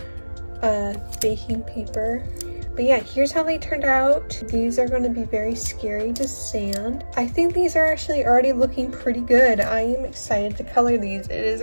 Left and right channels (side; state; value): both; inverted; correlation -1.00